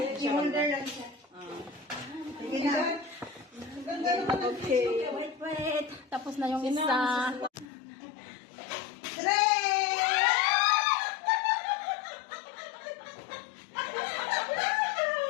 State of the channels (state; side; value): drops out; right; at 7.7 s